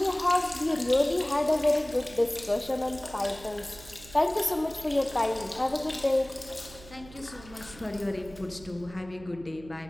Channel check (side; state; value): right; noise; hum, 19 dB below the sound